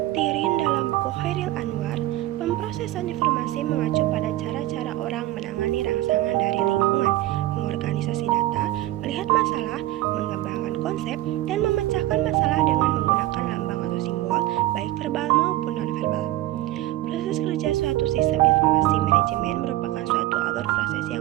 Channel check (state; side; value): quieter; left; 15.6 dB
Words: Tirin dalam buku Khairil Anwar, pemrosesan informasi mengacu pada cara-cara orang menangani rangsangan dari lingkungan, mengorganisasi data, melihat masalah, mengembangkan konsep, dan memecahkan masalah dengan menggunakan lambang atau simbol, baik verbal maupun non-verbal. Proses kerja suatu sistem informasi manajemen merupakan suatu alur proses